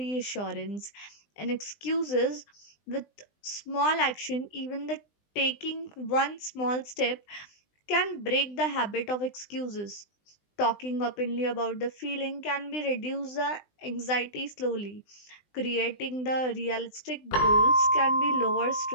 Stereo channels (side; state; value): right; late; 20 ms